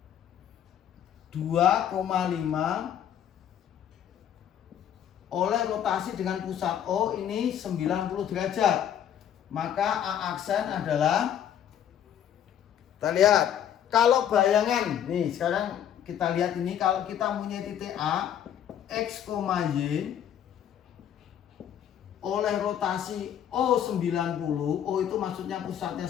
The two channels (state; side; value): quieter; right; 9.8 dB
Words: 2,5 oleh rotasi dengan pusat O ini 90 derajat. Maka A aksen adalah, kita lihat kalau bayangan nih, sekarang kita lihat ini, kalau kita punya titik A X, Y oleh rotasi O 90, O itu maksudnya pusatnya